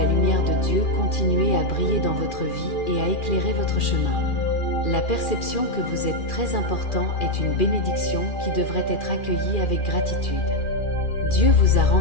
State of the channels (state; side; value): late; right; 2.4 ms